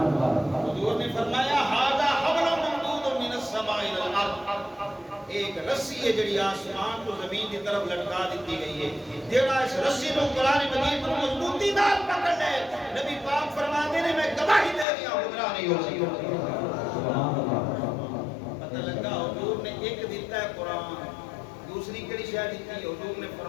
حضور نے فرمایا ھذا حبل ممدود من السماء الى الارض ایک رسی ہے جڑی آسمان کو زمین کی طرف لٹکا دیتی گئی ہے جڑا اس رسی کو قرآن مجید پر مضبوطی نال پکڑ لے نبی پاک فرماتے ہیں میں گواہی دے رہا ہوں گمراہ نہیں ہو سکتا پتہ لگا حضور نے ایک دیتا ہے قرآن دوسری کڑی شاید دیتی ہے حضور نے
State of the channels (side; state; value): right; drops out; at 14.9 s